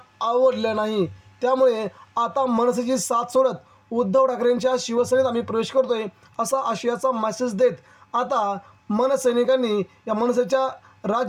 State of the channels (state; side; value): identical; both; correlation 1.00